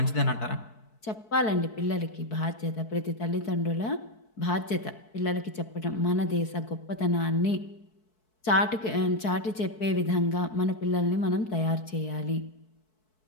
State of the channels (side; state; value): right; late; 4.6 ms